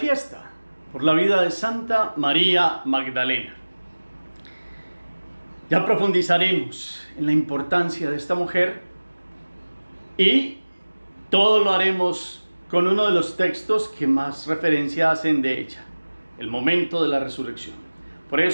por la vida de Santa María Magdalena. Ya profundizaremos en la importancia de esta mujer y todo lo haremos con uno de los textos que más referencia hacen de ella, el momento de la resurrección. Por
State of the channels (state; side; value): inverted; both; correlation -1.00